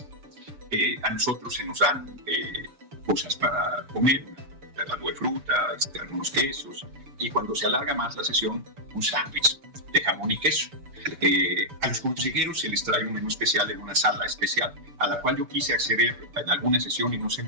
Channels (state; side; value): late; left; 7.0 ms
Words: A nosotros se nos dan cosas para comer, algo de fruta, algunos quesos, y cuando se alarga más la sesión, un sándwich de jamón y queso. A los consejeros se les trae un menú especial en una sala especial, a la cual yo quise acceder en alguna sesión y no se